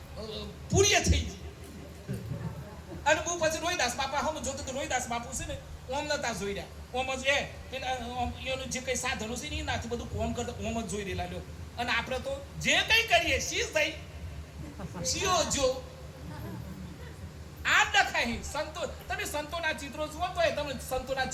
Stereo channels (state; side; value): identical; both; correlation 1.00